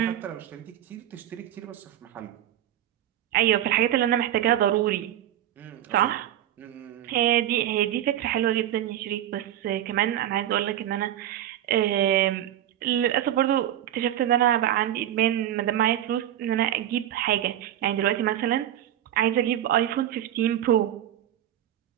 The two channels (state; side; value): quieter; left; 11.9 dB